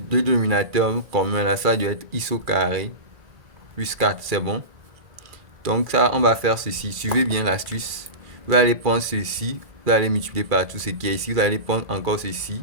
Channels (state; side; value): late; left; 2.3 ms